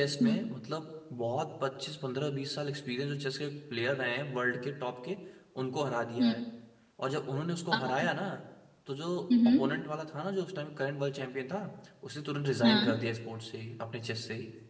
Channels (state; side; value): identical; both; correlation 1.00